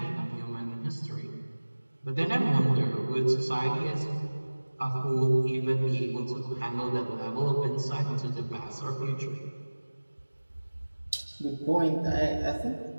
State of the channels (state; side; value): inverted; both; correlation -1.00